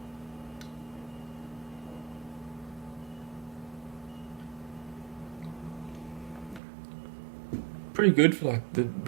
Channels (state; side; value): drops out; left; at 6.6 s